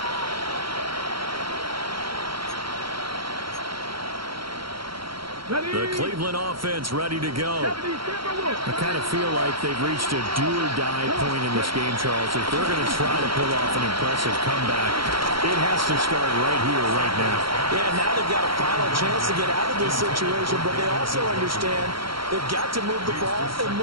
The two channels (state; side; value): late; left; 0.74 ms